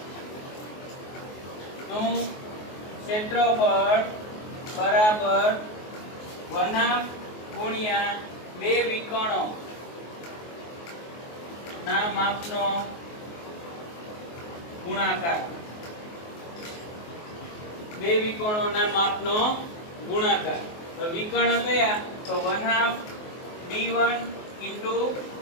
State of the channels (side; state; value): right; late; 24 ms